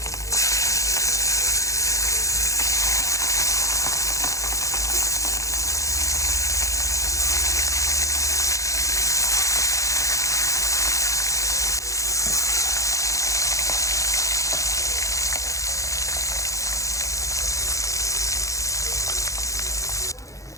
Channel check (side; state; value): right; late; 0.15 ms